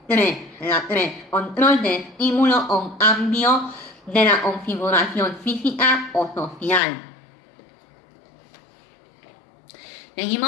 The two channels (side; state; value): right; drops out; at 6.8 s